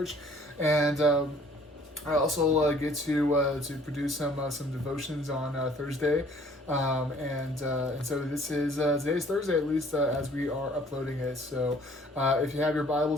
and I also get to produce some devotions on Thursday, and so this is today's Thursday, at least as we are uploading it. So if you have your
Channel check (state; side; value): normal; both; correlation 0.56